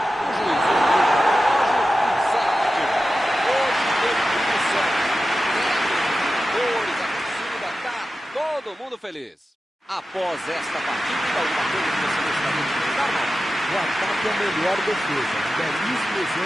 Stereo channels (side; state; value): both; normal; correlation 0.93